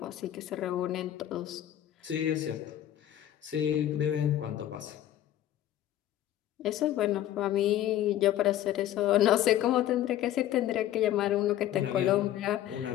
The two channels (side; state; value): right; quieter; 12.4 dB